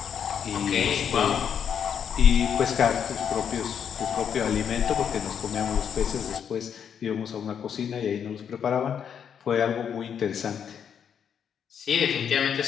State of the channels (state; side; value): quieter; right; 8.0 dB